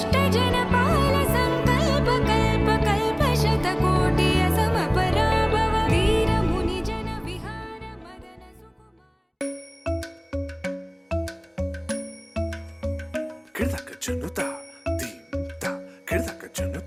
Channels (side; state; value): both; identical; correlation 1.00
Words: जनपाल संकल्प कल्प कल्प शतकोटि असमपराभव वीर मुनि जन विहार मदन सुकुमार ಕಿಡ್ದಕ ಜನುತ ದೀಂತ ಕಿಡ್ದಕ